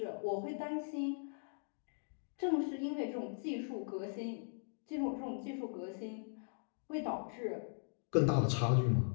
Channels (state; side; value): silent; right; digital silence